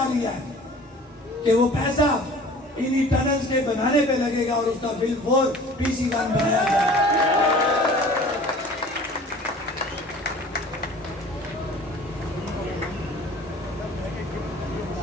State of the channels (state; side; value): normal; both; correlation 0.45